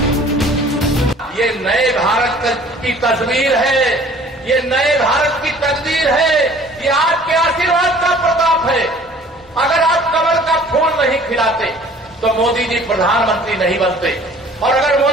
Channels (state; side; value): normal; both; correlation 0.51